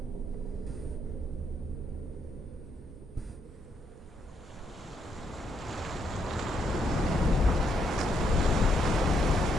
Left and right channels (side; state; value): both; normal; correlation 0.76